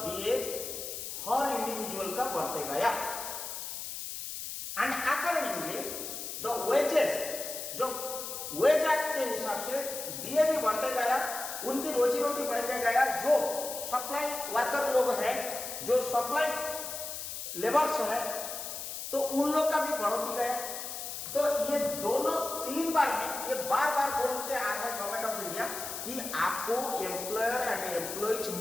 डीए हर इंडिविजुअल का बढ़ते गया। वेजेस जो वेज एक्ट के हिसाब से दिए भी बढ़ते गया, उनकी रोजी रोटी बढ़ते गया। जो सप्लाई वर्कर लोग हैं, जो सप्लाई लेबर्स है, तो उन लोग का भी बढ़ोती गया। तो ये दोनों 3 बार में ये बार बार बोलते आ रहा है गवर्नमेंट ऑफ इंडिया कि आपको एम्प्लॉयर एंड एम्प्लॉइज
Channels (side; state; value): left; noise; hiss, 7 dB below the sound